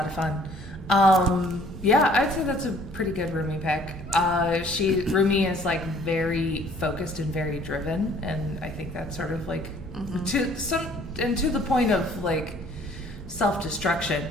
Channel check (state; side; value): noise; left; hum, 27 dB below the sound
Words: of fun. I'd say that's a pretty good Rumi pick. Rumi is like very focused and very driven, and I think that's sort of like to the point of like self-destruction.